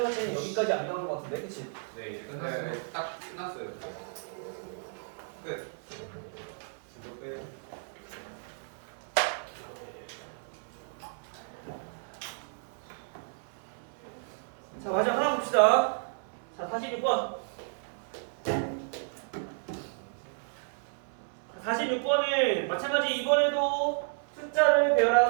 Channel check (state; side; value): silent; left; 56 dB below the other